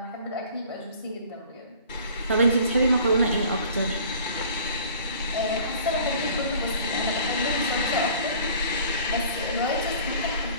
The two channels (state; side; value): inverted; both; correlation -0.49